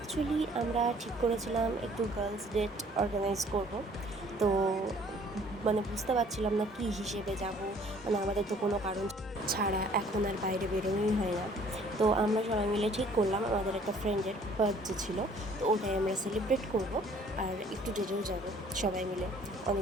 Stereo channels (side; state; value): both; normal; correlation 0.57